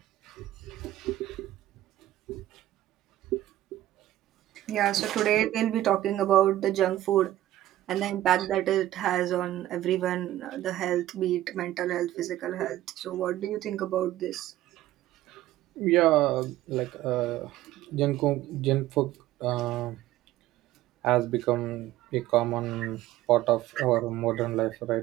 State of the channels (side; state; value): left; quieter; 14.4 dB